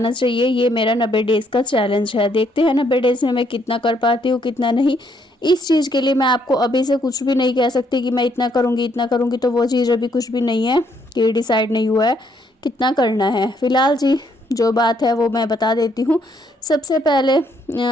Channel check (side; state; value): both; normal; correlation 0.71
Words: चाहिए। ये मेरा 90 डेज़ का चैलेंज है। देखते हैं 90 डेज़ में मैं कितना कर पाती हूँ कितना नहीं। इस चीज़ के लिए मैं आपको अभी से कुछ भी नहीं कह सकती कि मैं इतना करूँगी, तो वो चीज़ अभी कुछ भी नहीं है कि डिसाइड नहीं हुआ है कितना करना है। फिलहाल जी जो बात है वो मैं बता देती हूँ। सबसे पहले